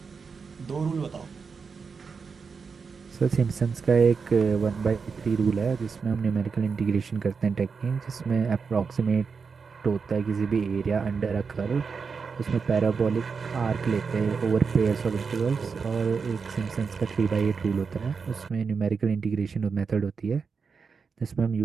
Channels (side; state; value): left; quieter; 5.4 dB